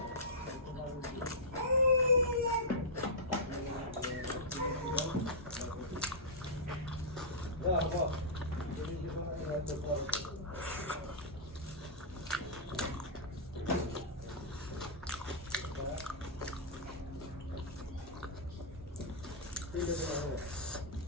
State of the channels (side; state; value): both; normal; correlation -0.13